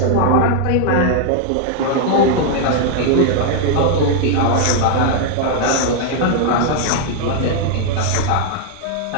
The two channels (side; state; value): both; different; correlation 0.00